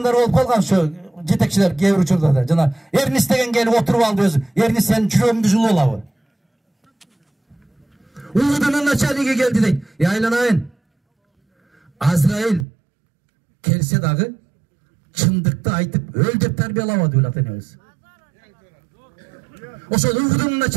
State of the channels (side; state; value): left; drops out; at 12.7 s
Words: болуп калган ошо жетекчилер кээ бир учурда да. Жана Эрнис деген келип отуруп алды өзү. Эрнис сенин жүрөгүңдү жылып алабы? Уğudunun начальниги келди дейт. Айланайын. Азраил келсе дагы чындыкты айтып өл деп тарбиялабады ул ата-энебиз. Ошол Уğudунун